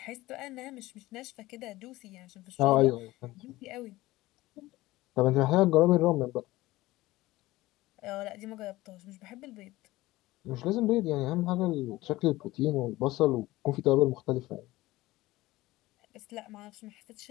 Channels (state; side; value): quieter; right; 18.2 dB